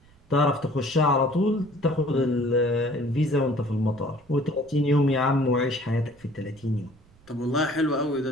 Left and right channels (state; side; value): noise; right; rumble, 29 dB below the sound